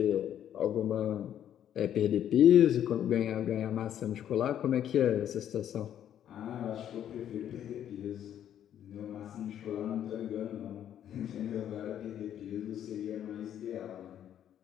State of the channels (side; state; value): right; quieter; 10.3 dB